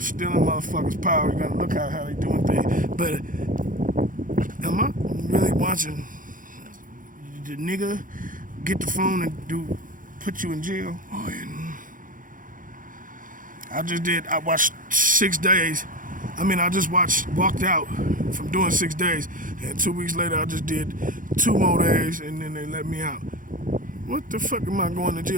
motherfuckers' power. You gotta look at how they doing things. But am I really watching the nigga get the phone and put you in jail? Oh, and I watched 6 days. I just walked out from doing 6 days, and 2 weeks later I just did 2 more days, and then they let me out. What the fuck am I going to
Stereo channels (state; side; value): late; left; 0.39 ms